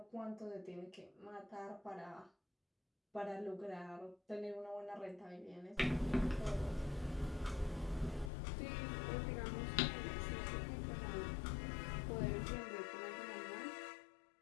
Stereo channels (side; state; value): right; drops out; at 8.3 s